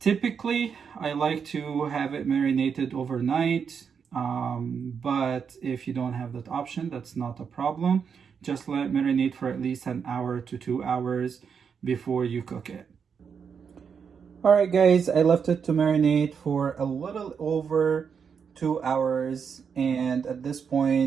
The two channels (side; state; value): left; quieter; 6.6 dB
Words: I like to have it marinated overnight, but if you don't have that option, that's not a problem. Just let it marinate for at least 1 hour to 2 hours before you cook it. Alright guys, I left it to marinate for a little over 2 hours, and at this